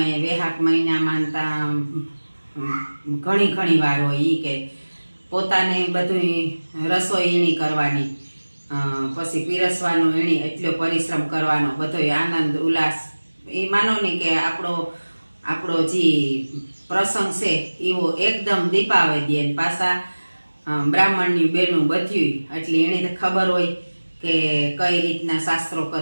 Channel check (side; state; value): both; inverted; correlation -1.00